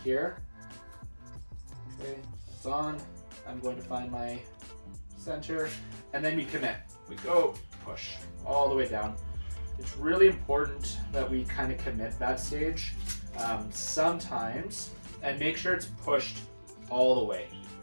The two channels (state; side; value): inverted; both; correlation -1.00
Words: here. Okay, it's on. I'm going to find my center, and then we commit. We go, push all the way down. It's really important that we kind of commit that stage sometimes, and make sure it's pushed all the way.